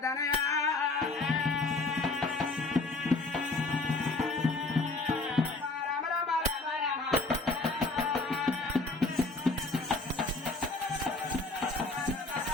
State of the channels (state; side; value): quieter; right; 3.3 dB